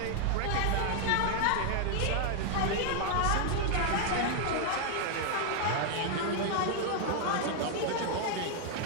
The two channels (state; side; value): different; both; correlation 0.00